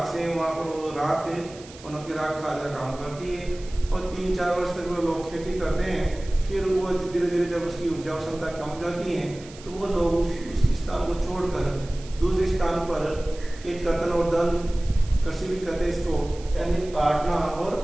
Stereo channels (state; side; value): noise; right; hiss, 20 dB below the sound